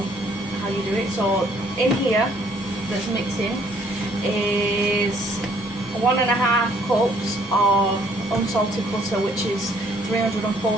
how you do it. So in here, that's mixing, is 1.5 cups of unsalted butter, which is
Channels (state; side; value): normal; both; correlation 0.63